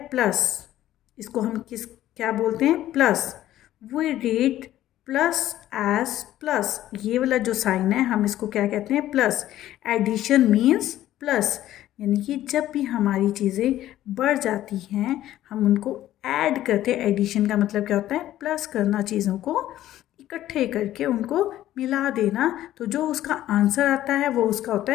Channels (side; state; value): right; quieter; 13.4 dB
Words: प्लस. इसको हम क्या बोलते हैं? Plus. We read plus as plus. ये वाला जो साइन है हम इसको क्या कहते हैं? प्लस. Addition means plus. यानी कि जब भी हमारी चीज़ें बढ़ जाती हैं हम उनको ऐड करते हैं. एडिशन का मतलब क्या होता है? प्लस करना, चीज़ों को इकट्ठे करके उनको मिला देना. तो जो उसका आंसर आता है वो उसका होता